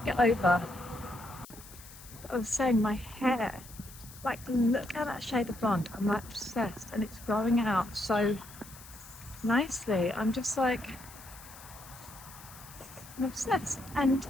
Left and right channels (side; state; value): left; noise; hiss, 18 dB below the sound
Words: get over. I was saying my hair, like look at that shade of blonde. I'm like obsessed, and it's growing out so nicely. I'm just like, I'm obsessed. And